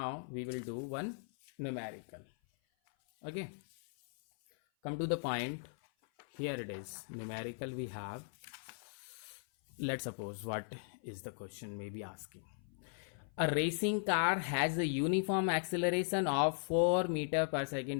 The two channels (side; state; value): right; silent; 52 dB below the other